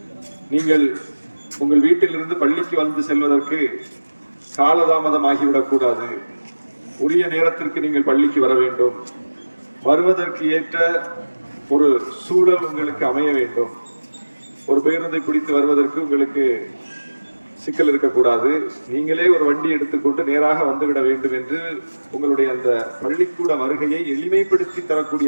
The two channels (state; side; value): inverted; both; correlation -1.00